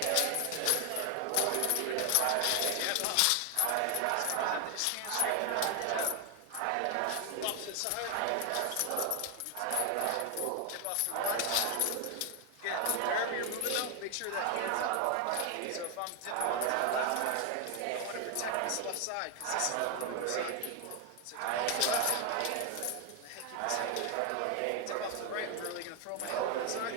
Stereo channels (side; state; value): both; different; correlation 0.01